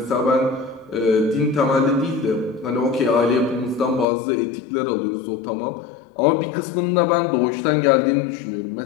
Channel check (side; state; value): right; drops out; at 4.0 s